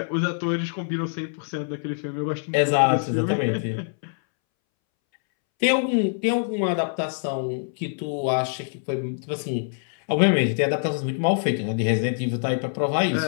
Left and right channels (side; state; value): right; silent; 62 dB below the other